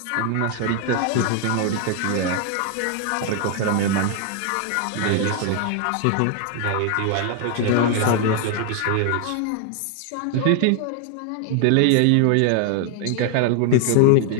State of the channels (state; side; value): different; both; correlation 0.00